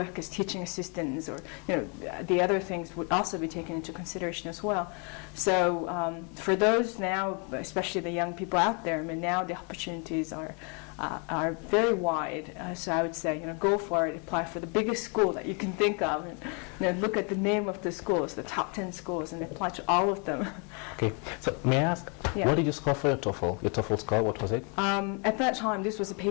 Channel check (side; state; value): right; quieter; 36.1 dB